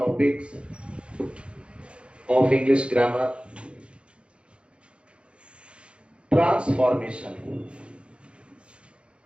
of English grammar, transformation.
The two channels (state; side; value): late; left; 0.058 ms